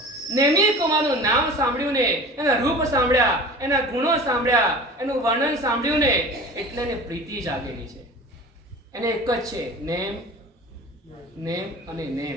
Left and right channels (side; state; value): both; normal; correlation 0.38